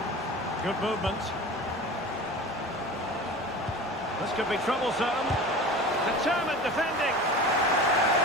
Good movement. This could be troublesome. Determined defending.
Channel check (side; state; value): both; normal; correlation 0.35